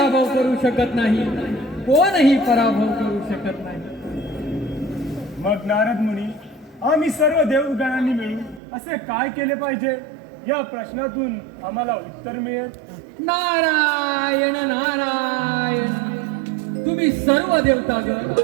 करू शकत नाही, कोणही पराभव करू शकत नाही. मग नारद मुनी, आम्ही सर्व देवगणांनी मिळून असे काय केले पाहिजे? या प्रश्नातून आम्हाला उत्तर मिळेल. नारायण नारायण तुम्ही सर्व देवतागण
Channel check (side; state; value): left; drops out; at 8.6 s